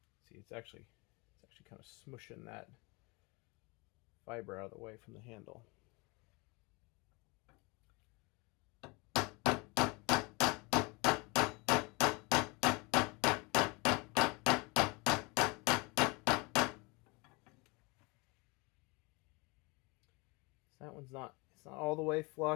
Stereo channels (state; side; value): quieter; right; 27.3 dB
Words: See, it's actually kind of smushing that fiber out of the way from the handle. So that one's it's not all the way